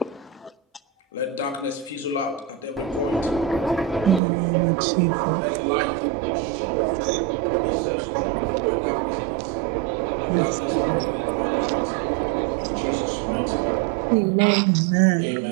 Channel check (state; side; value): drops out; left; at 4.2 s